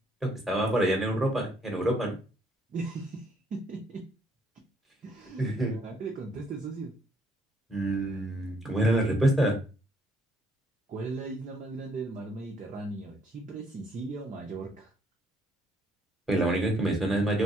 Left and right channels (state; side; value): normal; both; correlation 0.68